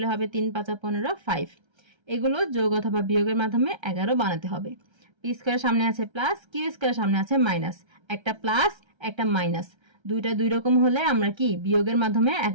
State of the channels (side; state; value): left; late; 1.3 ms